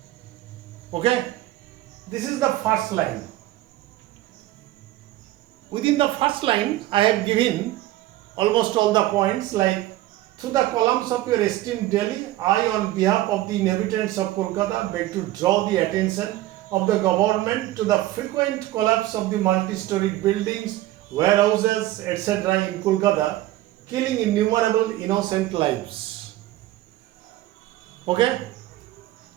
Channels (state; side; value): quieter; left; 15.7 dB